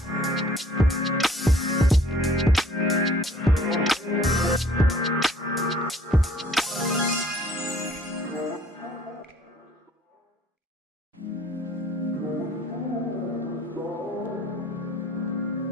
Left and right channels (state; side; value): normal; both; correlation 0.56